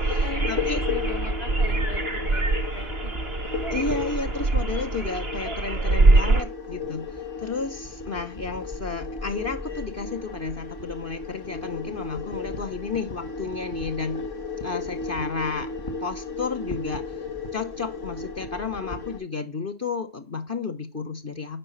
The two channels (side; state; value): left; late; 2.5 ms